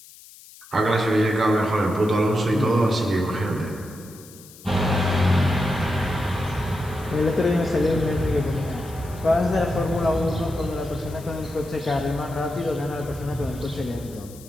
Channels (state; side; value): noise; left; hiss, 21 dB below the sound